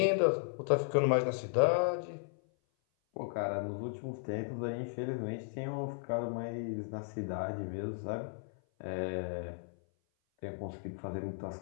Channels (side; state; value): right; silent; 54 dB below the other